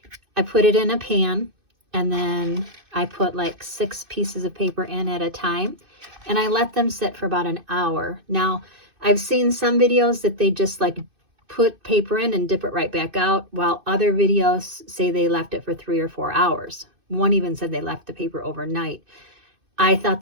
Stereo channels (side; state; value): left; late; 2.6 ms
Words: I put it in a pan, and then I put like 6 pieces of paper in at a time, and I let them sit for about an hour. Now, I've seen some videos that they just like put paper in and dip it right back out, while other videos say they left it for 3 or 4 hours. One even said they left the paper overnight. I thought